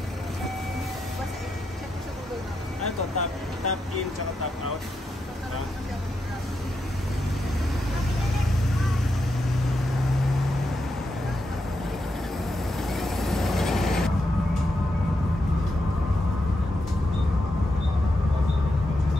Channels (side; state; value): both; normal; correlation 0.84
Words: Ano to? Top in tsaka top out?